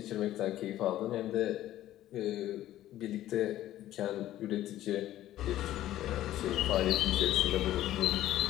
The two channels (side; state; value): right; quieter; 13.6 dB